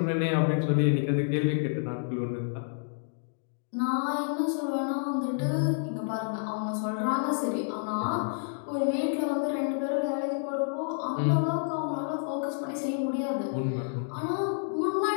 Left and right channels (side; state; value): right; silent; digital silence